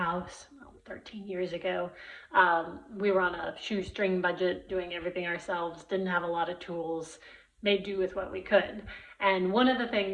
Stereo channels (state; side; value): identical; both; correlation 1.00